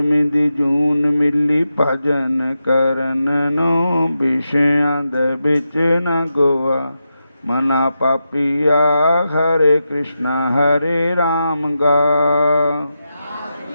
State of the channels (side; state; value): both; inverted; correlation -0.88